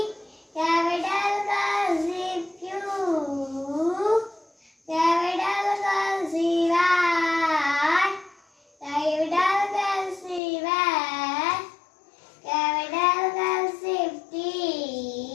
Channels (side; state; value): right; drops out; at 10.4 s